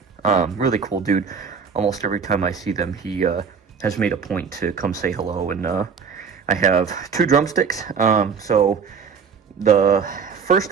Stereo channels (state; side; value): quieter; left; 6.2 dB